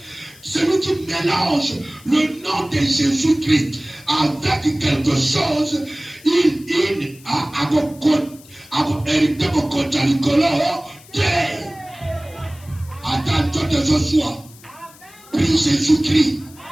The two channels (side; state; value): left; noise; hiss, 23 dB below the sound